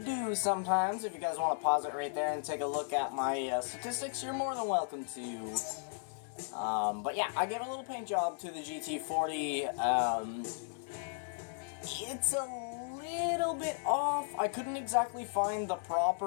sometimes. If you guys want to pause it right there and take a look at my statistics, you're more than welcome to. But yeah, I gave a little paint job to the GT40. It's a little bit off. I couldn't exactly find the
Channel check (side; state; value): right; silent; 54 dB below the other